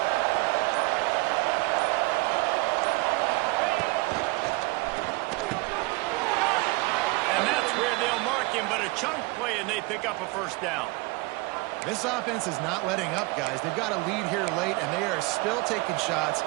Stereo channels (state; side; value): quieter; left; 24.7 dB